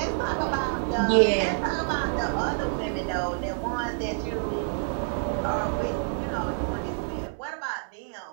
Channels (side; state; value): left; silent; digital silence